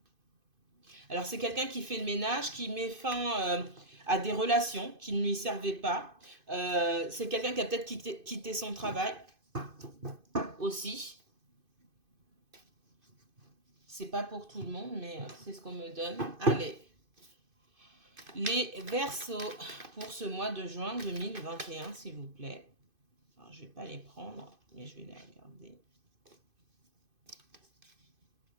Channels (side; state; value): left; late; 2.5 ms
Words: Alors, c'est quelqu'un qui fait le ménage, qui met fin à des relations qui ne lui servaient pas. C'est quelqu'un qui a peut-être quitté son travail aussi. C'est pas pour tout le monde, mais c'est ce qu'on me donne. Allez. Les Verseaux pour ce mois de juin 2021, s'il vous plaît. Alors, je ne vais pas les prendre, mais je vais les regarder.